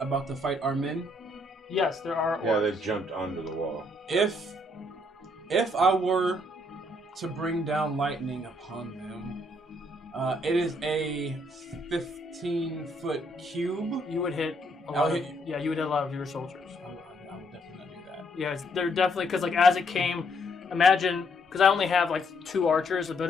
about to fight our men? Yes, there are orcs. Yeah, they've jumped onto the wall. If I were to bring down lightning upon them, it is a 15-foot cube. You would hit a lot of your soldiers. I would definitely not do that. Yeah, they're definitely, because like as it came, imagine, because I only have like 2 archers, but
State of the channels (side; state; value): both; normal; correlation 0.71